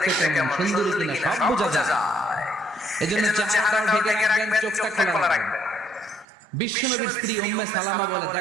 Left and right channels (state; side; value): drops out; left; at 6.2 s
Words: দেখতে কেমন, সুন্দরী কিনা সব বোঝা যায়। এজন্য চেহারাটাও ঢেকে রাখবেন, চোখটা খোলা রাখবেন। বিশ্বনবীর স্ত্রী উম্মে সালামা বলে,